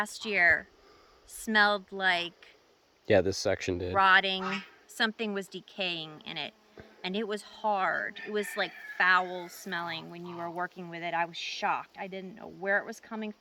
year smelled like... Yeah, this section did. Rotting. Something was decaying in it. And it was hard. It was like foul smelling when you were working with it. I was shocked. I didn't know where it was coming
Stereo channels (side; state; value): both; identical; correlation 1.00